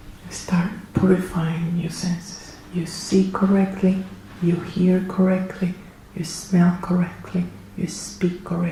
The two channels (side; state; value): both; identical; correlation 1.00